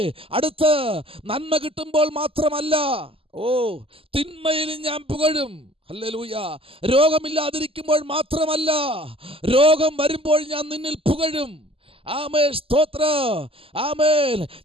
അടുത്ത് നന്മ കിട്ടുമ്പോൾ മാത്രമല്ല, തിന്മയിൽ ഞാൻ പുകഴും. ഹല്ലേലൂയ. രോഗമില്ലാതിരിക്കുമ്പോൾ മാത്രമല്ല, രോഗം വരുമ്പോൾ ഞാൻ നിന്നിൽ പുകഴും. ആമേൻ, സ്തോത്രം. ആമേൻ.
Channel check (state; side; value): late; left; 0.26 ms